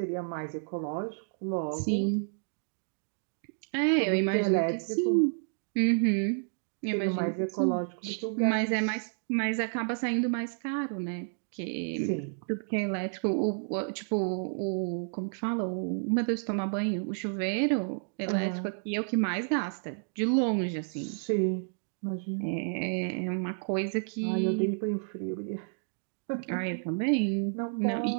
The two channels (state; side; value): silent; left; digital silence